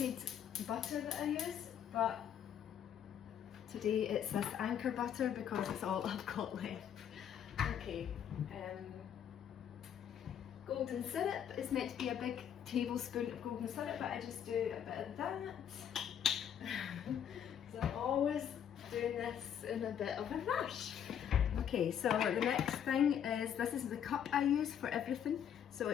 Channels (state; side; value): quieter; right; 9.0 dB